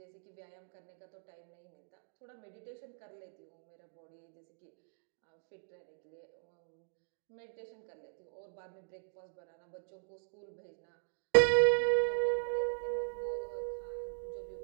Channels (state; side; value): silent; left; digital silence